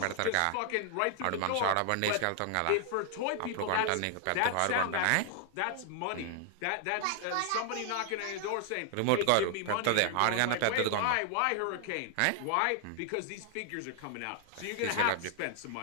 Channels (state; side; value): different; both; correlation 0.00